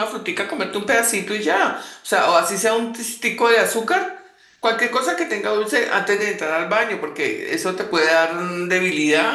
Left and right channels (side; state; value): both; identical; correlation 1.00